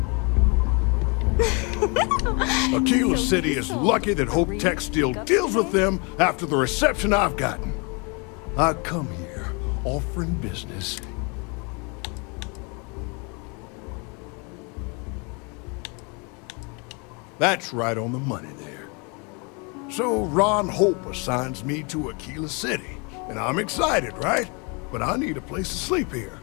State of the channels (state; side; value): quieter; right; 32.4 dB